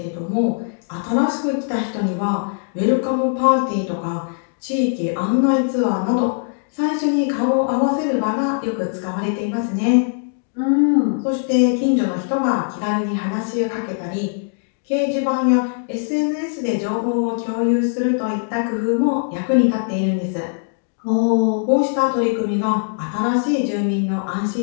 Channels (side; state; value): right; silent; digital silence